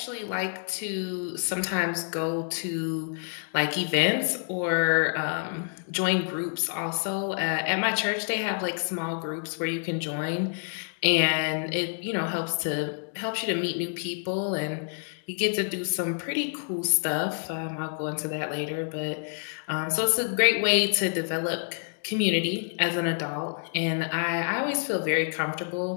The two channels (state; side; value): silent; right; 59 dB below the other